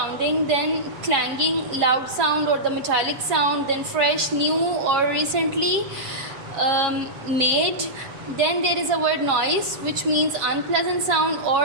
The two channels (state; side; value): late; left; 7.3 ms